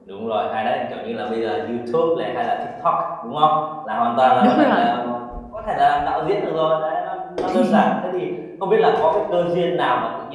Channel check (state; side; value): identical; both; correlation 1.00